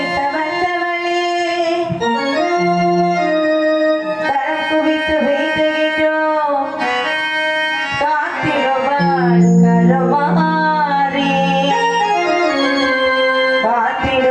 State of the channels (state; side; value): identical; both; correlation 1.00